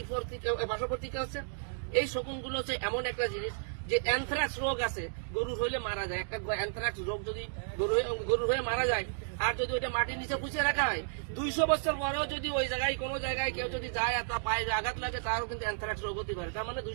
পার্শ্ববর্তী আছে, এই শকুনগুলো হচ্ছে এমন একটা জিনিস যে অ্যানথ্রাক্স রোগ আছে, গরুর হইলে মারা যায়। একটা অ্যানথ্রাক্স রোগ যদি গরুর হয়ে মারা যায়, আর যদি ওইটা মাটির নিচে পুঁছে রাখা হয়, 200 বছর পরেও যদি ওই জায়গায় কোনো জায়গায় কেউ যদি যায় আর তা পায়ে আঘাত লাগে, তারও কিন্তু অ্যানথ্রাক্স রোগ হতে পারে। তার মানে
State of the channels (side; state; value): left; silent; digital silence